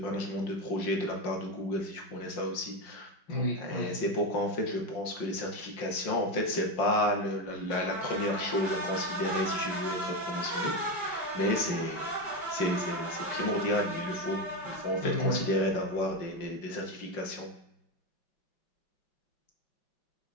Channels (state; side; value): late; right; 5.6 ms